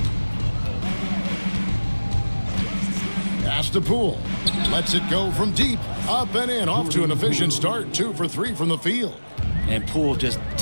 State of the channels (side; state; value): both; inverted; correlation -1.00